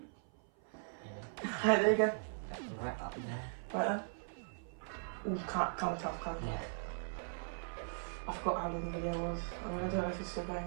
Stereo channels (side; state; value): left; silent; 52 dB below the other